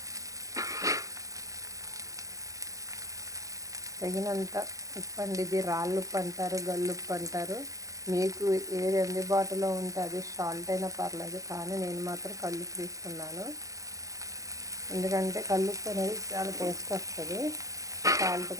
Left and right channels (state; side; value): late; left; 0.16 ms